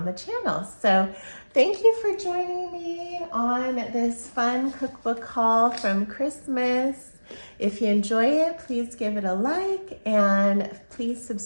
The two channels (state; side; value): inverted; both; correlation -1.00